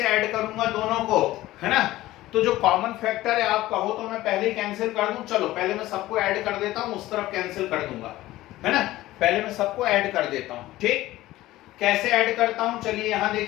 ऐड करूंगा दोनों को, है ना? तो जो कॉमन फैक्टर है, आप कहो तो मैं पहले ही कैंसिल कर दूं। चलो पहले मैं सबको ऐड कर देता हूं, उस तरफ कैंसिल कर दूंगा, है ना? पहले मैं सबको ऐड कर देता हूं। ठीक, कैसे ऐड करता हूं? चलिए यहां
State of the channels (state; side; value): quieter; right; 16.5 dB